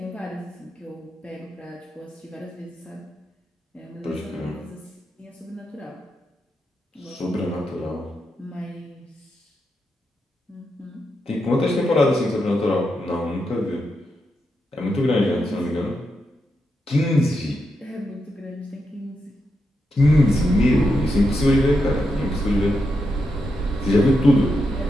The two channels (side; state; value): both; normal; correlation 0.85